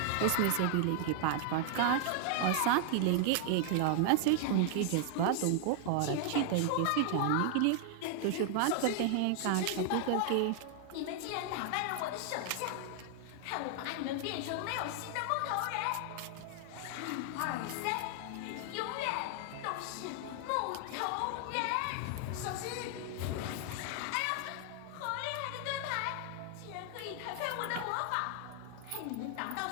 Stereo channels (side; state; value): both; different; correlation 0.00